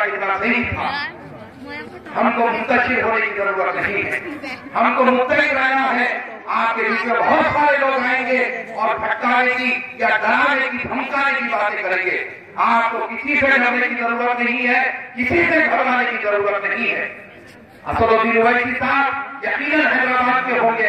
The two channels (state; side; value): identical; both; correlation 1.00